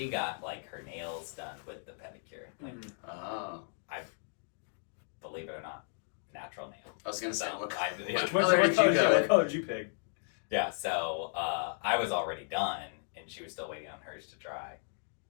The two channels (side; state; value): right; silent; digital silence